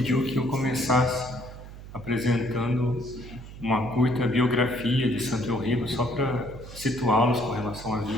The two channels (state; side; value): noise; right; hum, 14 dB below the sound